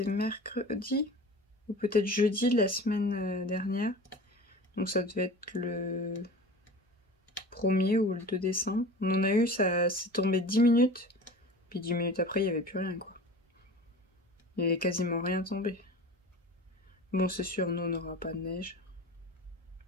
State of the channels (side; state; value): both; normal; correlation 0.37